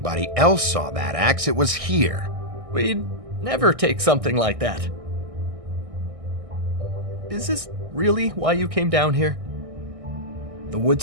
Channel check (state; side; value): late; left; 1.6 ms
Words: else saw that axe, it was here. We'd never take something like that. Is this really why you came down here? The